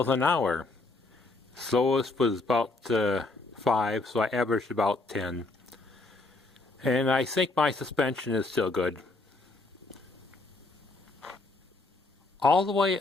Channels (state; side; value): quieter; right; 3.4 dB